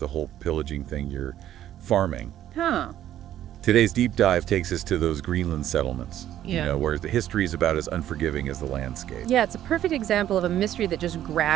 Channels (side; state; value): left; quieter; 11.9 dB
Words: whole pillaging thing, you're farming. Huh. Today's deep dive takes us to those Greenland settlements, Yeah. where the history is about as unforgiving as the landscape. Yeah, it's a perfect example of a mystery that just